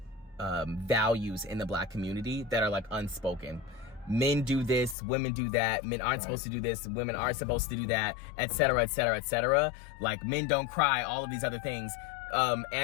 values in the Black community that are like unspoken. Men do this, women do that, men aren't supposed to do this, women are supposed to do that, etc., etc., etc. Like, men don't cry, all of these other things.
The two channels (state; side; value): drops out; right; at 5.0 s